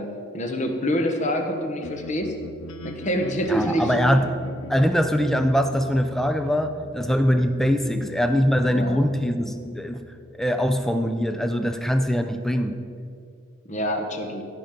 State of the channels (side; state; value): both; normal; correlation 0.81